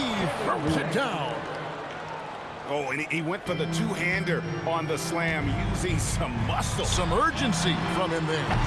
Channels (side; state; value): both; identical; correlation 1.00